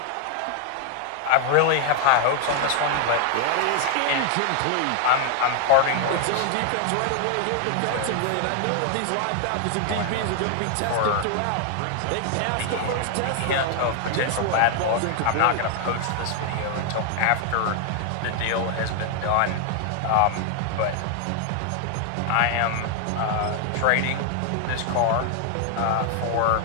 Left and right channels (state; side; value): different; both; correlation 0.00